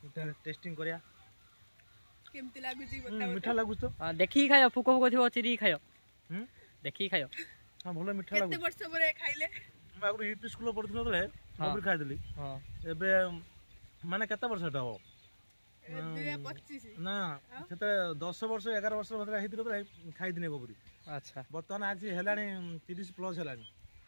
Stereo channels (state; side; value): inverted; both; correlation -1.00